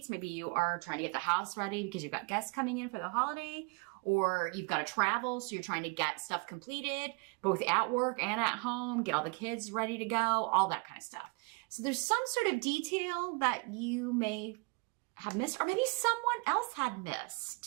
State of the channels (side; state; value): left; quieter; 31.1 dB